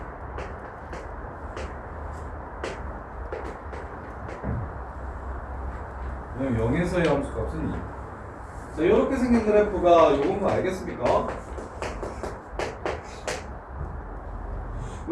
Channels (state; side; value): identical; both; correlation 1.00